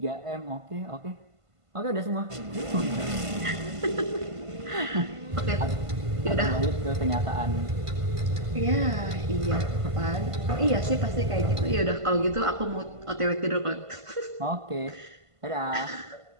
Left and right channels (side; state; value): left; late; 1.5 ms